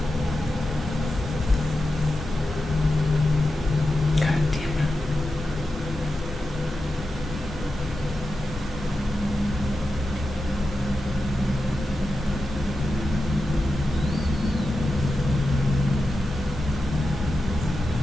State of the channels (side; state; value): both; normal; correlation 0.90